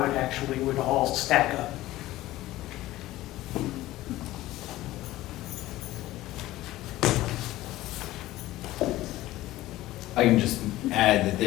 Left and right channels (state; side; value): quieter; right; 16.4 dB